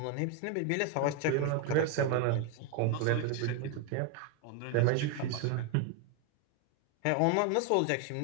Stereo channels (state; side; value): different; both; correlation 0.01